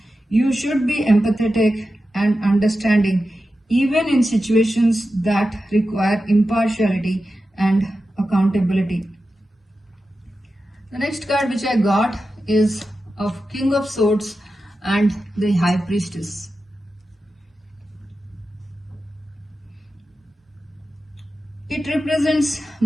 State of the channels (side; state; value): both; normal; correlation 0.92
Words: You should be empathetic and understanding even in situations that require impartiality and accountability. The next card which I got is of King of Swords and the High Priestess. It represents